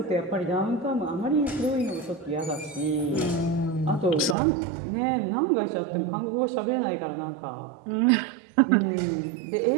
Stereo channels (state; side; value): drops out; left; at 4.4 s